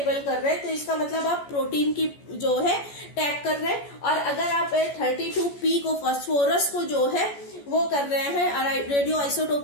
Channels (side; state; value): right; late; 14 ms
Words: कर रहे हैं तो इसका मतलब आप प्रोटीन की जो है टैग कर रहे हैं, और अगर आप 32P को फॉस्फोरस को जो है वो कर रहे हैं और रेडियो